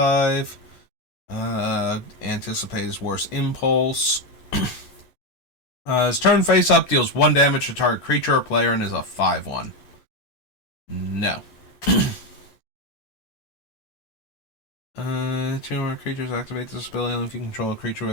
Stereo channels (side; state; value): right; late; 11 ms